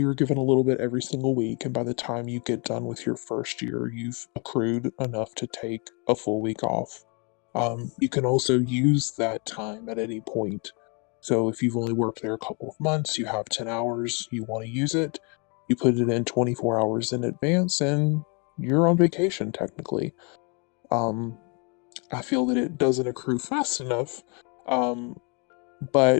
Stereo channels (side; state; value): right; quieter; 34.3 dB